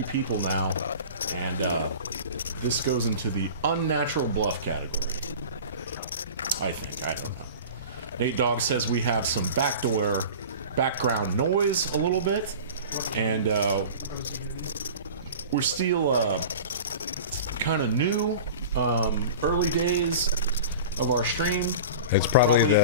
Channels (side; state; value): both; inverted; correlation -0.37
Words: people now, and this goes into the unnatural bluff category. I think. I don't know. Nate Dogg says we have some background noise a little bit, and we're still kind of new, early days of our stream. It's probably